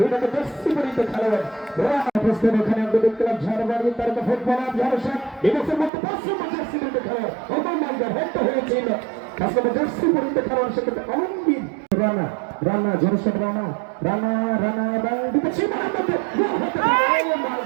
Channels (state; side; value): drops out; left; at 5.9 s